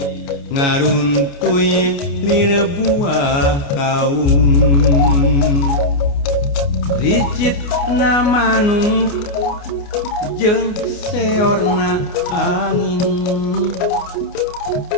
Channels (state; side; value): late; right; 29 ms